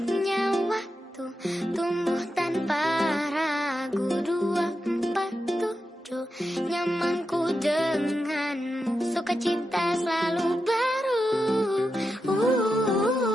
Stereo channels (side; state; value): both; normal; correlation 0.88